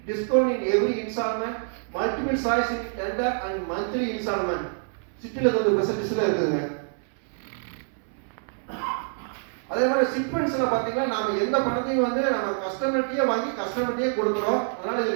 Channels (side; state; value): left; silent; 61 dB below the other